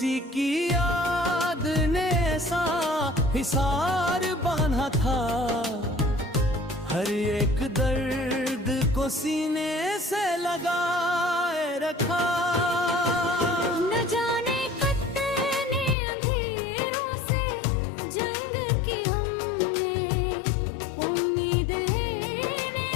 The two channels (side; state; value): right; drops out; at 16.0 s